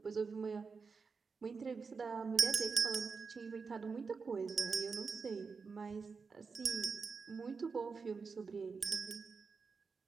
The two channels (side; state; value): left; quieter; 5.0 dB